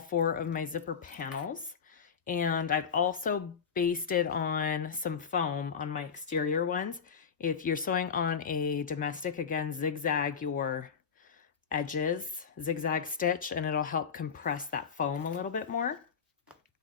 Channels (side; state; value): right; quieter; 6.6 dB